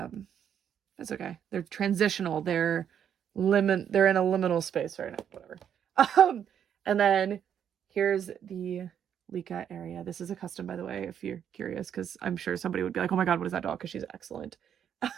okay. They're transitional. They're in a liminal space right now. Whatever. And then here's the Licca area. This is a custom, by the way, if you're curious, because I'm sure somebody would be like, oh my god, what is that doll? Because she's excellent.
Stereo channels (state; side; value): quieter; left; 8.8 dB